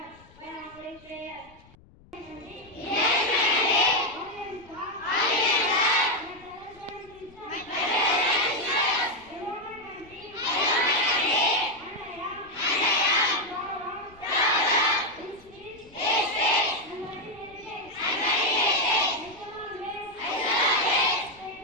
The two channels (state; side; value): noise; left; rumble, 26 dB below the sound